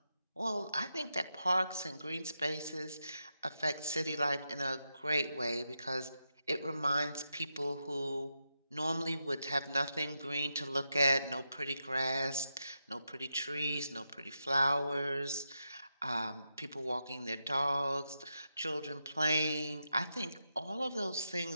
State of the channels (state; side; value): inverted; both; correlation -0.86